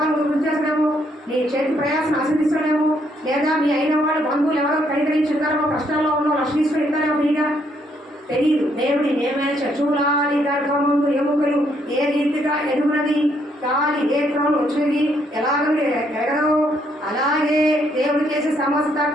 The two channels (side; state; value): both; normal; correlation 0.71